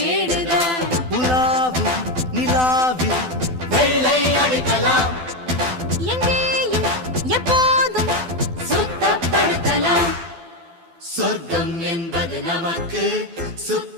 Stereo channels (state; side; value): late; left; 12 ms